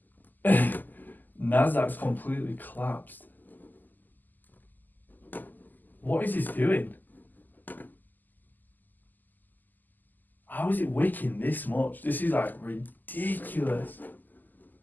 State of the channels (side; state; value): right; late; 0.086 ms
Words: Nasdaq's completely collapsed. What is this doing? How is it wicking this much? This is like ridiculous.